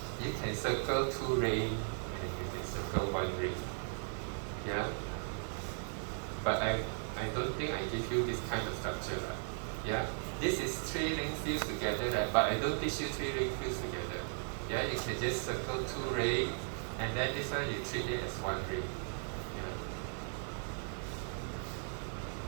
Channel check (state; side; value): silent; left; 53 dB below the other